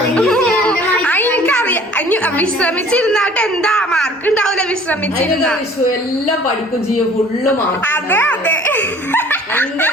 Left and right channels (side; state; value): both; normal; correlation 0.51